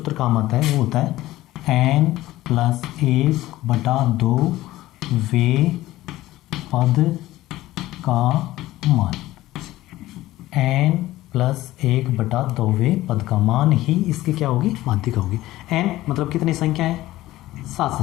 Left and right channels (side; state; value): right; quieter; 16.3 dB